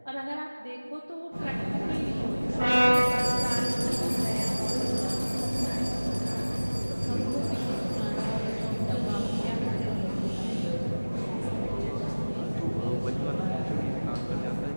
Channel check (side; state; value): both; inverted; correlation -1.00